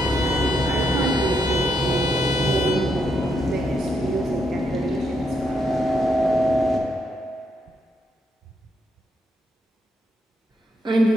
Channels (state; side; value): normal; both; correlation 0.79